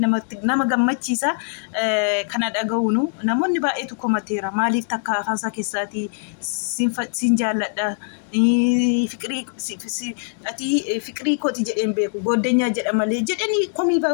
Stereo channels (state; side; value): silent; right; 64 dB below the other